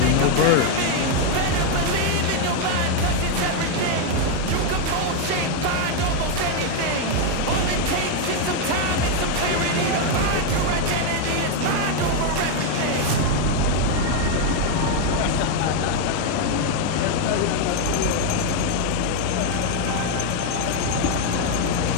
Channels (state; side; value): different; both; correlation 0.01